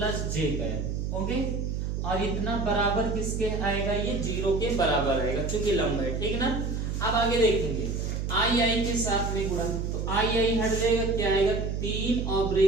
j कैप, ओके, और इतना बराबर किसके आएगा, ये 0 के बराबर आएगा क्योंकि लंब है, ठीक ना। अब आगे देखेंगे आई के साथ में गुणा, तो आई हट जाएगा, क्या आएगा 3 और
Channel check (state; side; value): noise; right; hum, 2 dB below the sound